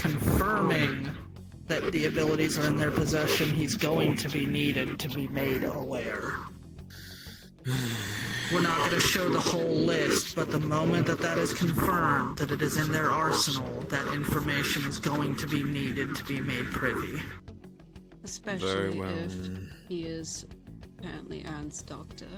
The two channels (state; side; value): identical; both; correlation 1.00